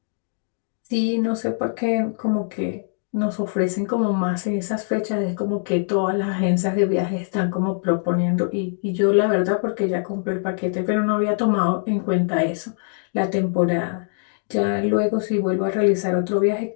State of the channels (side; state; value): right; silent; digital silence